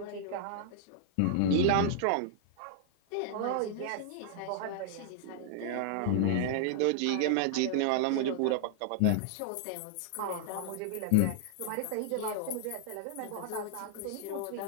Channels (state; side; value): different; both; correlation -0.01